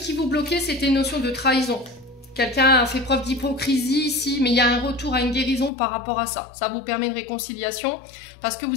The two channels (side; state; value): right; drops out; at 5.7 s